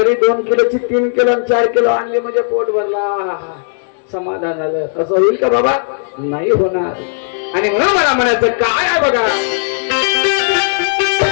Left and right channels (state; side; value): silent; right; digital silence